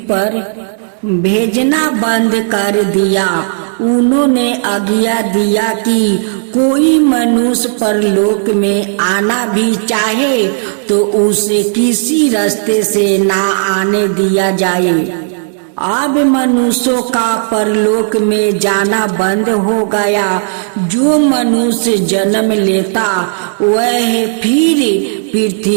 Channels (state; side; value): silent; left; digital silence